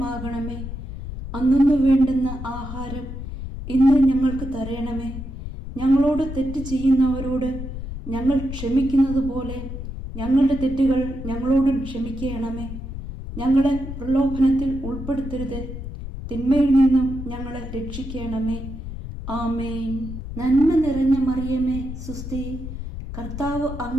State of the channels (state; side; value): noise; left; rumble, 8 dB below the sound